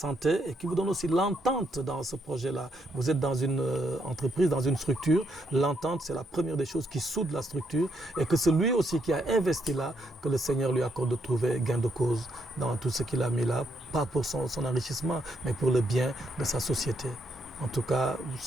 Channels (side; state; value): both; normal; correlation 0.76